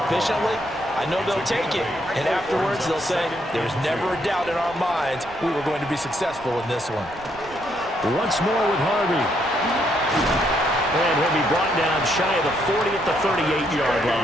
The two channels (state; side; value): noise; right; rumble, 21 dB below the sound